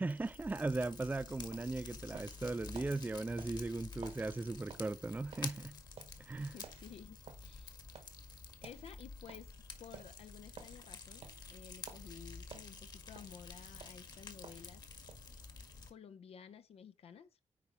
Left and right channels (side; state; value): both; normal; correlation 0.85